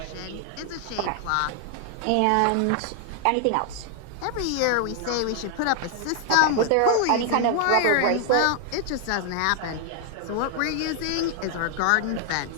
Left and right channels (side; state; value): both; different; correlation 0.00